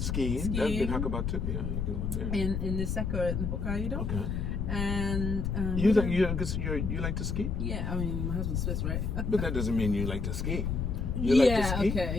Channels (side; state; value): left; noise; rumble, 1 dB below the sound